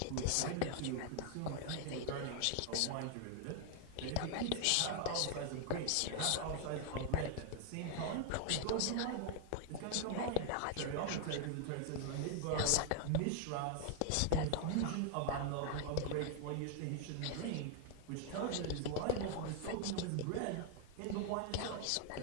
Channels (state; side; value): different; both; correlation 0.00